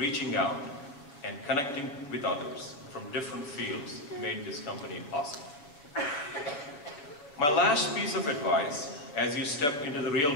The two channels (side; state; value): right; late; 7.0 ms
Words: out and connecting with others from different fields made this company possible. My last piece of advice as you step into the real